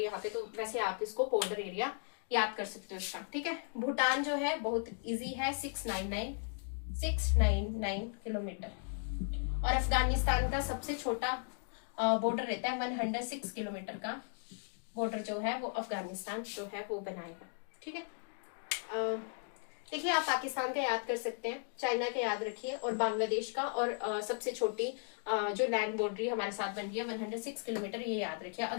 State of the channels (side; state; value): right; silent; 54 dB below the other